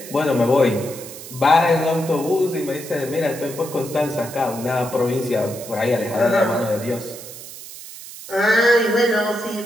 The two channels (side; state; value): right; noise; hiss, 14 dB below the sound